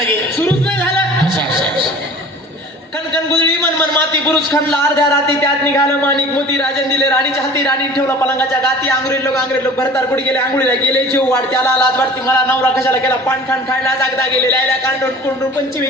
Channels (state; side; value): normal; both; correlation 0.44